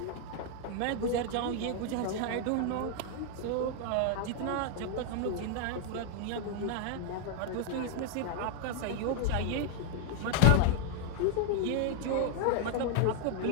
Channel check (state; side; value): different; both; correlation 0.00